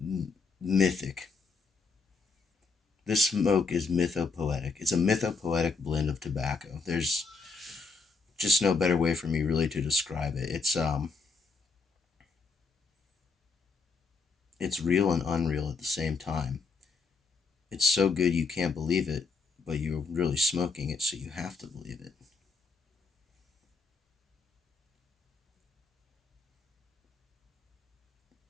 mythic. This smoke is mythopoetic. It's a mythopoetic blend of tobacco. There's just no better way for me really to describe it. it's real and unreal at the same time. It's so good you can't believe it, but you're really smoking it, so you have to believe it.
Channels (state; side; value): quieter; right; 4.1 dB